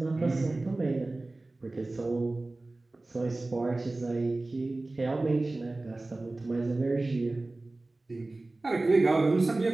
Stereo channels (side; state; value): left; quieter; 3.0 dB